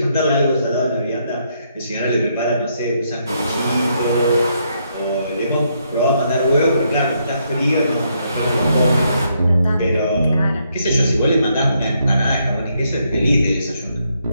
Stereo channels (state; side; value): inverted; both; correlation -0.75